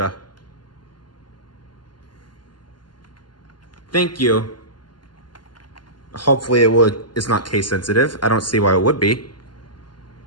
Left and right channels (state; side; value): late; right; 0.71 ms